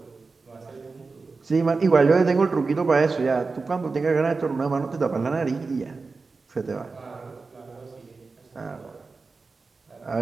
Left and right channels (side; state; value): left; quieter; 4.2 dB